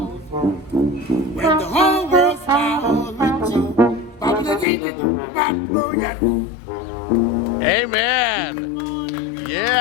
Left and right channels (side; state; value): right; drops out; at 4.7 s